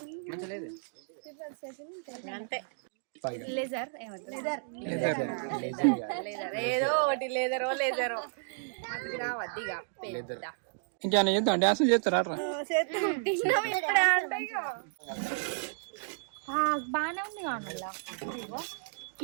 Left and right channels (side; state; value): left; silent; digital silence